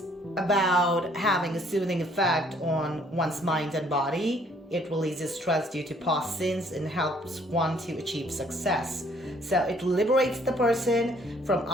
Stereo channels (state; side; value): normal; both; correlation 0.62